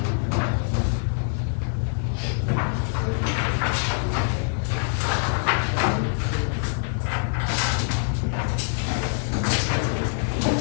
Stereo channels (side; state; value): right; silent; digital silence